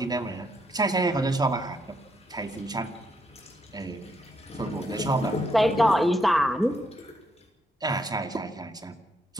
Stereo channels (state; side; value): normal; both; correlation 0.76